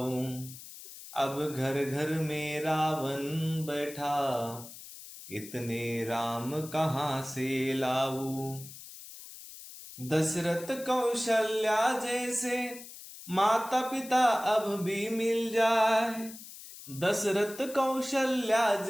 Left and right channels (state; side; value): noise; left; hiss, 15 dB below the sound